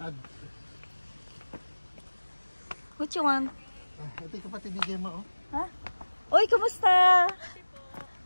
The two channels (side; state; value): both; inverted; correlation -1.00